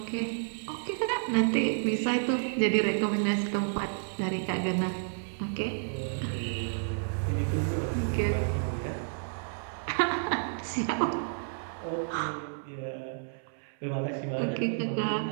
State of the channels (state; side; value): silent; left; 57 dB below the other